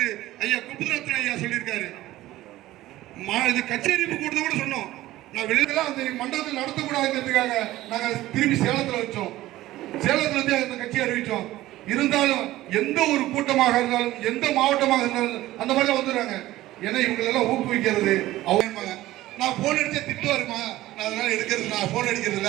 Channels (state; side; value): quieter; left; 16.1 dB